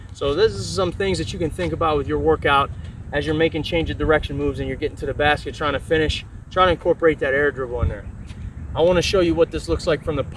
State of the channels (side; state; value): both; identical; correlation 1.00